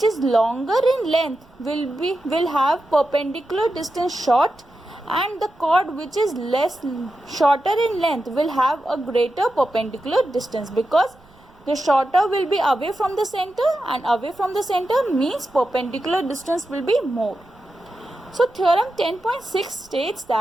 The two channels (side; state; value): right; noise; rumble, 28 dB below the sound